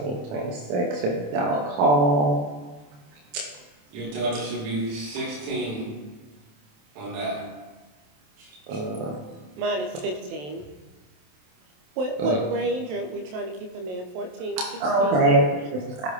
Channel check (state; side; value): late; left; 27 ms